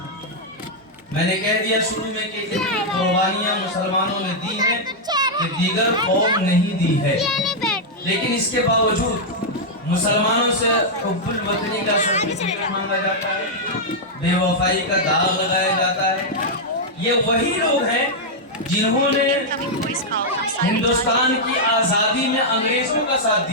میں نے کہہ دیا شروع میں کہ اتنی قربانیاں مسلمانوں نے دی ہیں کہ دیگر قوم نہیں دی ہے، لیکن اس کے باوجود مسلمانوں سے حب الوطنی کا سرٹیفکیٹ مانگا جاتا ہے، بے وفائی کا داغ لگایا جاتا ہے۔ یہ وہی لوگ ہیں جنہوں نے ہندوستان کی آزادی میں انگریزوں کا ساتھ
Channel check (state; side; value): normal; both; correlation -0.05